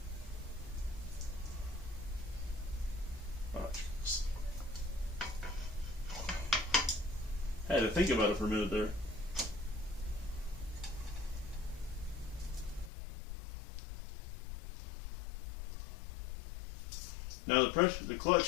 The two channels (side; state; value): right; drops out; at 12.9 s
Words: I had to think about it for a minute there. Now the